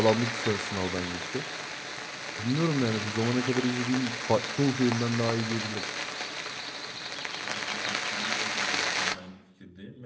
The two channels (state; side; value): identical; both; correlation 1.00